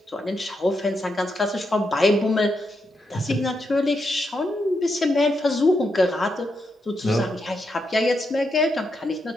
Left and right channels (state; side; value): normal; both; correlation 0.82